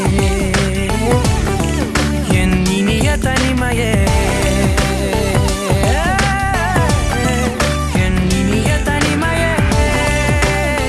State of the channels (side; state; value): both; identical; correlation 1.00